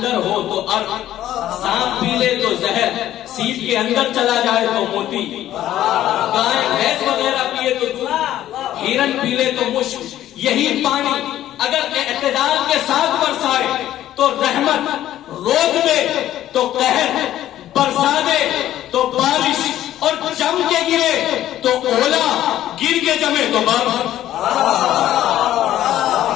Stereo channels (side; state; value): right; quieter; 12.8 dB